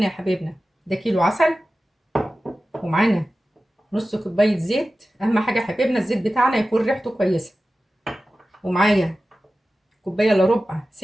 يا حبايبنا ده كيلو عسل، ومعانا نص كوبايه زيت. اهم حاجه يا حبايبنا الزيت بتاعنا يكون ريحته كويسه. ومعايا كوبايه الا ربع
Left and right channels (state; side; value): normal; both; correlation 0.95